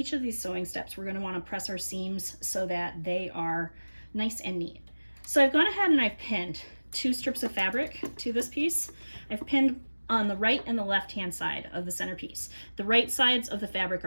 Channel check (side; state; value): both; inverted; correlation -1.00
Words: of these sewing steps, we're going to want to press our seams so that they are nice and neat. So I've gone ahead and I've pinned 2 strips of fabric to this piece. I've pinned on the right and the left hand side of the centerpiece. The right sides of the fabric